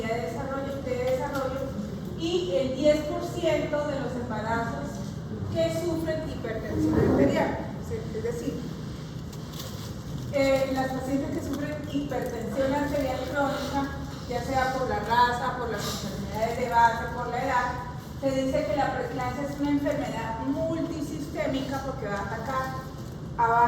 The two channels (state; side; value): identical; both; correlation 1.00